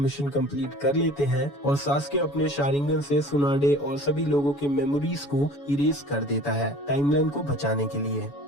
कंप्लीट कर लेते हैं और सास्के अपने शारिंगन से सुनाडे और सभी लोगों के मेमोरीज को इरेज कर देता है टाइमलाइन को बचाने के लिए।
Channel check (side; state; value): right; late; 7.1 ms